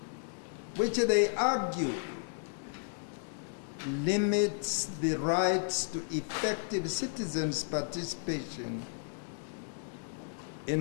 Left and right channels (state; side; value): silent; right; digital silence